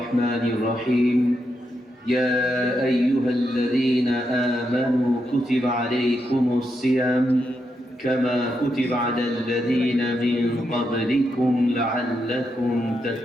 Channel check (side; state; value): both; normal; correlation 0.83